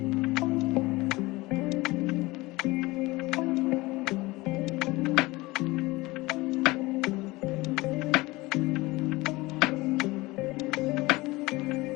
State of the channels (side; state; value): right; quieter; 21.4 dB